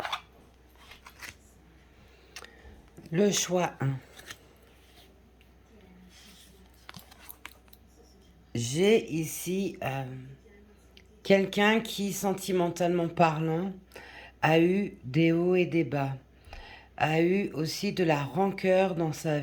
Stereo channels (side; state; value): both; identical; correlation 1.00